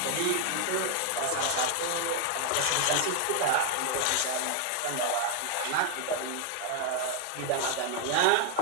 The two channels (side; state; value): both; different; correlation 0.00